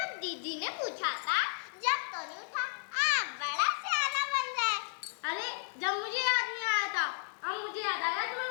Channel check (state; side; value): silent; right; digital silence